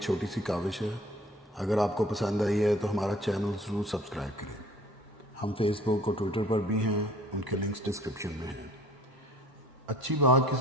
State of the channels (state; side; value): normal; both; correlation 0.52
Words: چھوٹی سی کاوش ہے. اگر آپ کو پسند آئی ہے تو ہمارا چینل ضرور سبسکرائب کریں. ہم فیس بک اور ٹویٹر پر بھی ہیں، ان کے لنکس ڈسکرپشن میں ہیں. اچھی بات